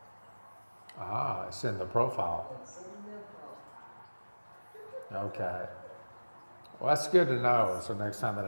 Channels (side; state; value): both; inverted; correlation -1.00